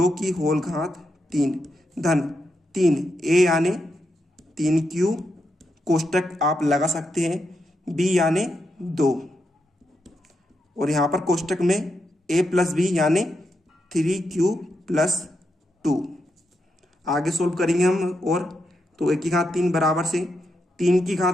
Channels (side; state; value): both; normal; correlation 0.83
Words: की होल घात 3 धन 3a यानी 3q कोष्टक आप लगा सकते हैं, b यानी 2 और यहाँ पर कोष्टक में a प्लस b यानी 3q प्लस 2। आगे सोल्व करेंगे हम और तो a की घात 3 बराबर से 3 की